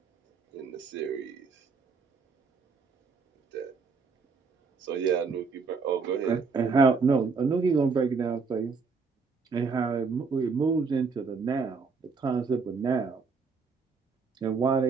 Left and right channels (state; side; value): quieter; left; 4.9 dB